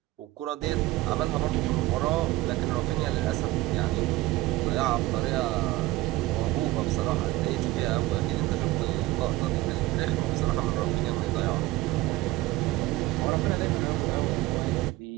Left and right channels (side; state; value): left; quieter; 18.3 dB